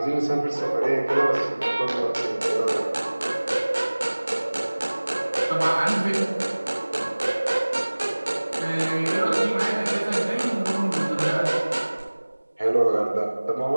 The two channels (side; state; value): both; inverted; correlation -1.00